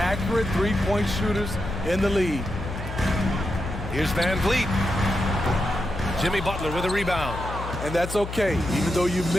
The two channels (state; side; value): noise; left; hum, 8 dB below the sound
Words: three-point shooters in the league. Here's Van Vliet. Jimmy Butler with a rebound. And that's okay. Even though you